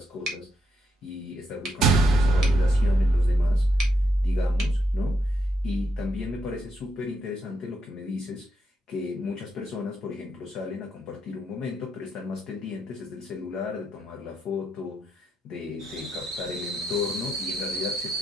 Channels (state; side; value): normal; both; correlation 0.79